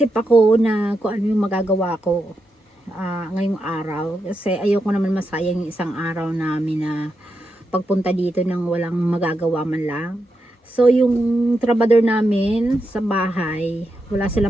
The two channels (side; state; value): both; normal; correlation 0.85